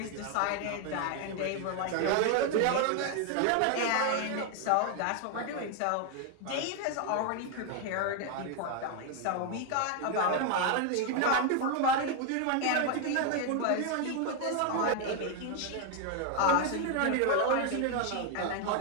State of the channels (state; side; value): different; both; correlation 0.01